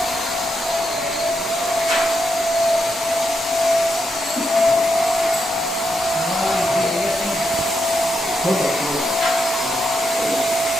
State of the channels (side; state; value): both; normal; correlation 0.82